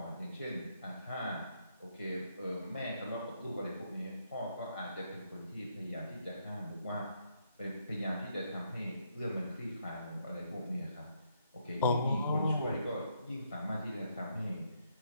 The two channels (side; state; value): both; inverted; correlation -0.75